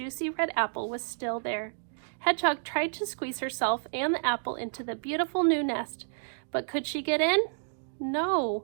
red apple was still there. Hedgehog tried to squeeze herself and the apple into the beautiful new nest, but could she get in?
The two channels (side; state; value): left; silent; digital silence